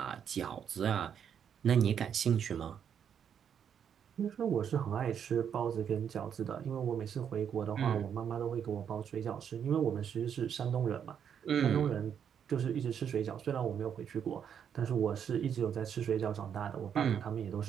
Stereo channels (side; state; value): left; quieter; 8.2 dB